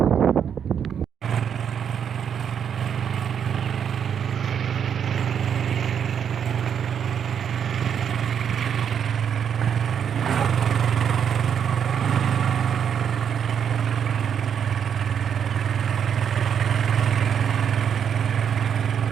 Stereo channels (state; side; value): quieter; left; 8.0 dB